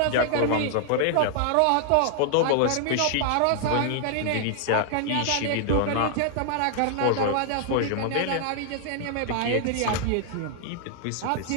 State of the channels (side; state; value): both; different; correlation 0.00